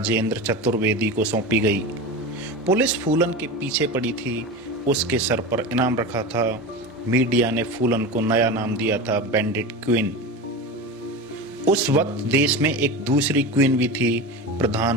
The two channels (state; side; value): normal; both; correlation 0.25